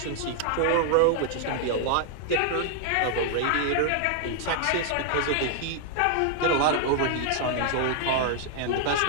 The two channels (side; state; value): both; different; correlation 0.00